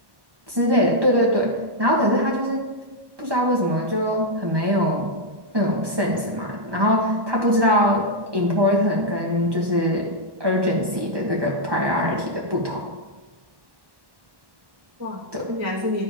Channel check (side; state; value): left; late; 1.1 ms